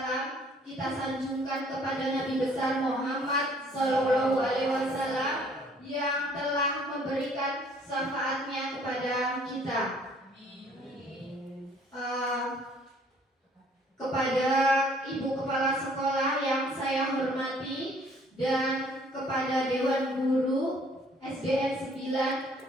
kita sanjungkan kepada Nabi besar Muhammad Sallallahu Alaihi Wasallam yang telah memberikan syafaatnya kepada kita. Kepada Ibu Kepala Sekolah yang saya hormati dan kepada Dewan Guru SDN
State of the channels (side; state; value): both; normal; correlation 0.59